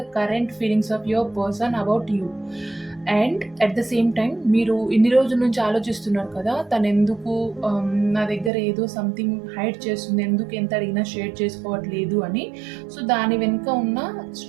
current feelings of your person about you. And at the same time మీరు ఇన్ని రోజుల నుంచి ఆలోచిస్తున్నారు కదా, తను ఎందుకు నా దగ్గర ఏదో సంథింగ్ హైడ్ చేస్తుంది, ఎందుకు ఎంత అడిగినా షేర్ చేసుకోవట్లేదు అని. సో దాని వెనుక ఉన్న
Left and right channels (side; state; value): left; drops out; at 8.5 s